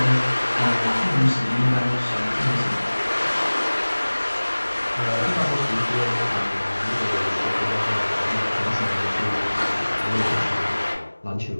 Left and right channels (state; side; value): inverted; both; correlation -1.00